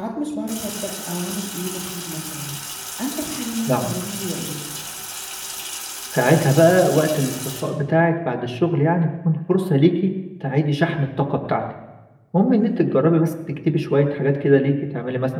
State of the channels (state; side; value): identical; both; correlation 1.00